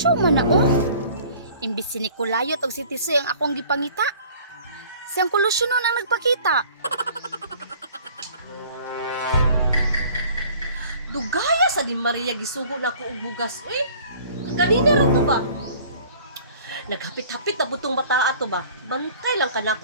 man na, oh. Imbis si Nicolayot o si Tisoy ang akong gipangita. Si Uncle Lucio nun ang nagpakita. Dugaya sa di Maria gisugo na ko og bugas. Uy, kanina ra to ba? Naghapit-hapit na butong bata ato ba? Bantay lang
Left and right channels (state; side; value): inverted; both; correlation -0.50